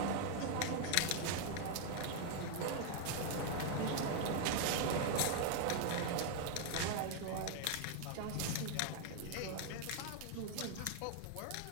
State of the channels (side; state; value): both; different; correlation 0.00